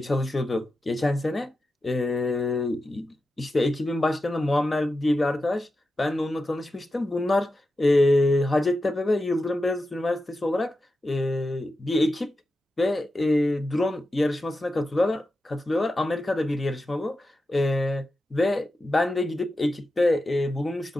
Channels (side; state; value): both; normal; correlation 0.91